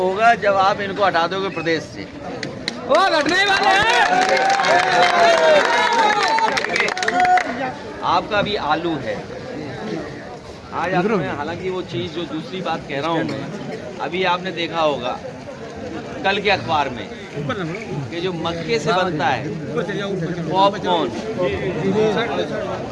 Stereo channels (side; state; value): both; identical; correlation 1.00